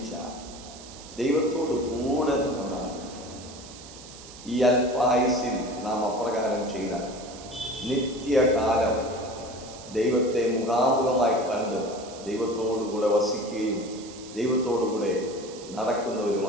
ദൈവത്തോട് കൂടെ നടന്ന ഈ അല്പായുസിൽ നാം അപ്രകാരം ചെയ്താൽ നിത്യകാലം ദൈവത്തെ മുഖാമുഖമായി കണ്ട് ദൈവത്തോടുകൂടെ വസിക്കുകയും ദൈവത്തോടുകൂടെ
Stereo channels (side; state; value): right; noise; hiss, 17 dB below the sound